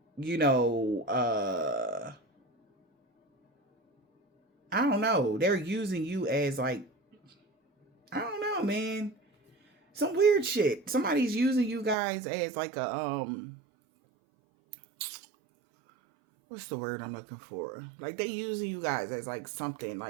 I don't know. They're using you as like, I don't know, man. Some weird shit. Somebody's using you guys as like a, what's the word I'm looking for? Like, they using you guys as like something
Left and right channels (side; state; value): left; drops out; at 12.0 s